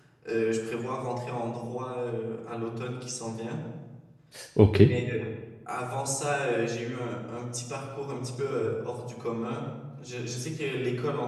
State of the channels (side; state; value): both; identical; correlation 1.00